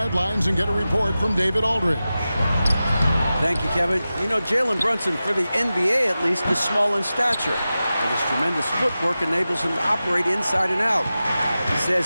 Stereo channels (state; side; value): inverted; both; correlation -0.94